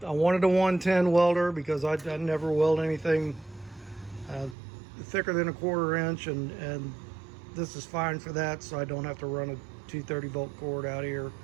a 110 welder because I never weld anything thicker than a 1/4 inch, and this is fine for that, so I don't have to run a 230 volt cord out here.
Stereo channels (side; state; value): left; drops out; at 4.5 s